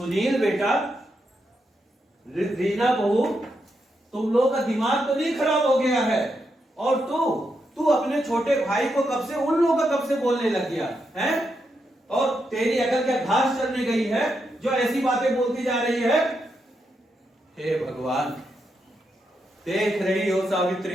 बेटा, रीना बहू, तुम लोग का दिमाग तो नहीं खराब हो गया है? और तू अपने छोटे भाई को कब से, उन लोगों का कब से बोलने लग गया है? और तेरी अकल क्या घास चढ़ने गई है जो ऐसी बातें बोलती जा रही है? हे भगवान, देख रही हो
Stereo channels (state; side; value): normal; both; correlation 0.83